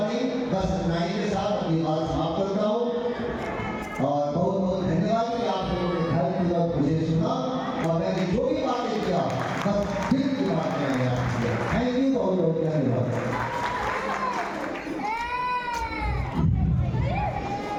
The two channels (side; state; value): both; identical; correlation 1.00